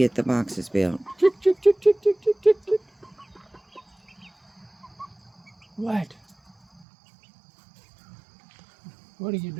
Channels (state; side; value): drops out; left; at 6.9 s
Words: the boxes built. What? What are you